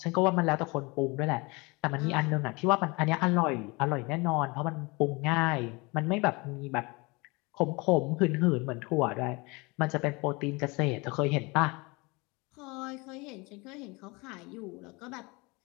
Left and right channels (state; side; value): quieter; right; 26.3 dB